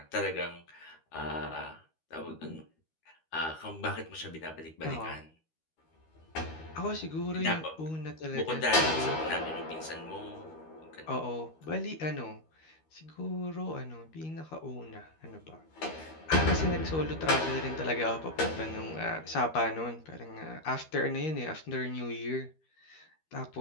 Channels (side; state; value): right; late; 13 ms